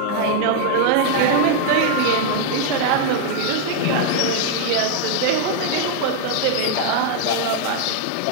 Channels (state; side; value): different; both; correlation 0.00